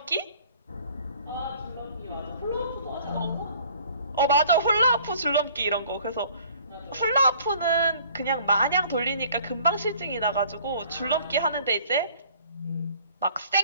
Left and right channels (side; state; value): both; inverted; correlation -0.55